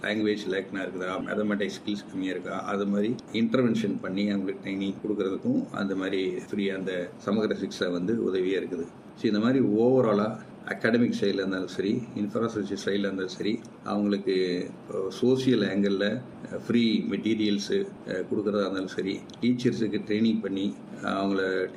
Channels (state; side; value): identical; both; correlation 1.00